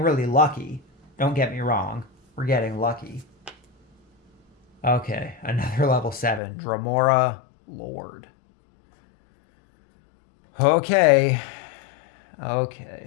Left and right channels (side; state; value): right; drops out; at 6.4 s